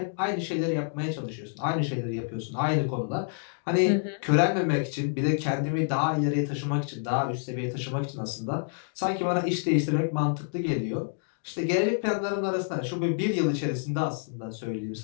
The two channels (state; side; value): silent; right; digital silence